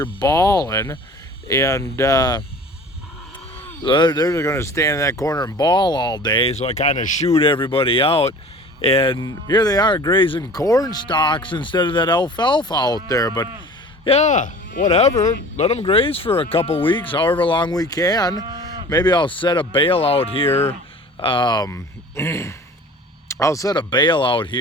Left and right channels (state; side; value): normal; both; correlation 0.43